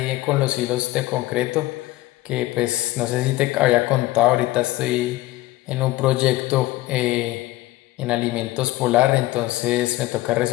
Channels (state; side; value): quieter; right; 17.6 dB